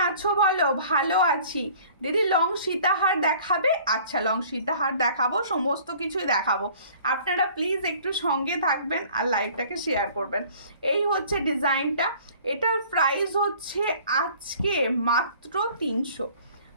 আছো বলো, ভালো আছি দিদি। লং সীতাহার দেখাবে? আচ্ছা লং সীতাহার দেখাবো, সমস্ত কিছুই দেখাবো, আপনারা প্লিজ একটু সঙ্গে থাকবেন আর লাইভটাকে শেয়ার করবেন। এই হচ্ছে ডিজাইনটা, এটার প্রাইস হচ্ছে আজকে মাত্র 300,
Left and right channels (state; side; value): inverted; both; correlation -0.51